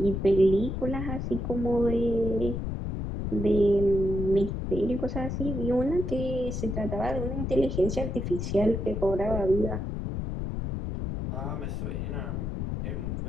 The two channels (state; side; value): noise; left; rumble, 3 dB below the sound